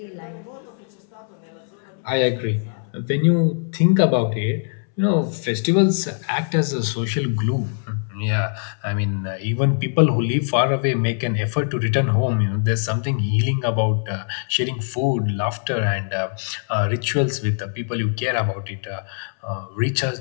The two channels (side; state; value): right; silent; 64 dB below the other